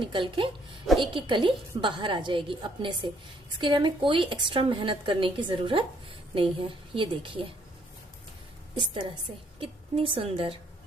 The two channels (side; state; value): both; normal; correlation 0.67